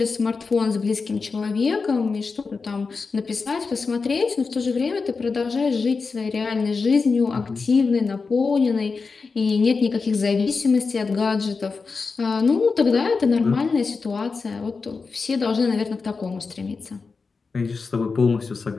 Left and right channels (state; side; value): quieter; right; 4.6 dB